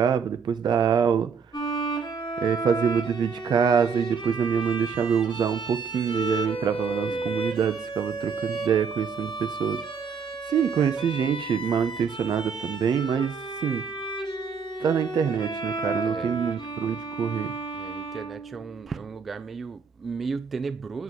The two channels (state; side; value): quieter; left; 6.1 dB